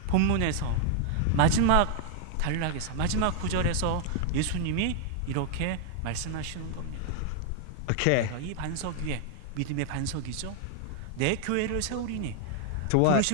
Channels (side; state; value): both; different; correlation 0.00